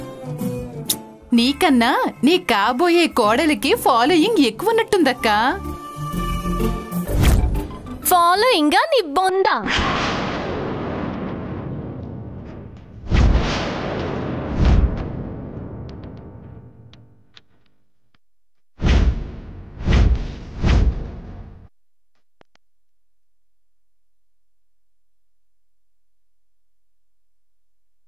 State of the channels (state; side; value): identical; both; correlation 1.00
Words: నీకన్నా నీ కాబోయే కోడలికి ఫాలోయింగ్ ఎక్కువ ఉన్నట్టుందక్క. ఫాలోయింగా నీ బొందా?